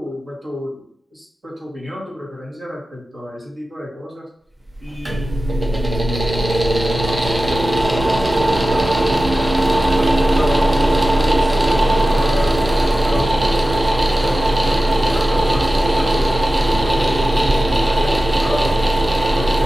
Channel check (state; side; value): normal; both; correlation 0.94